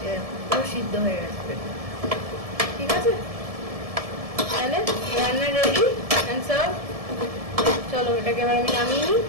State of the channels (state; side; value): late; left; 1.7 ms